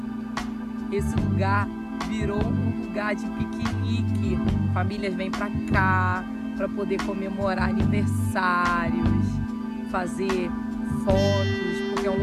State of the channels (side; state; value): both; identical; correlation 1.00